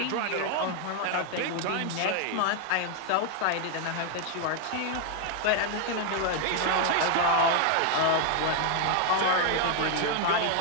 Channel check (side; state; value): both; different; correlation 0.01